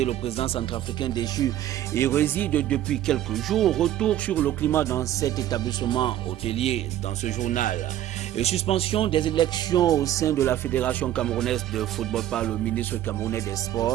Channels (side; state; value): left; quieter; 12.4 dB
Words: le président centrafricain déchu, y réside depuis quelques jours. Retour sur le climat dans cet établissement hôtelier dans ce journal. Et suspension des élections au sein de la Fédération camerounaise de football par le ministre camerounais des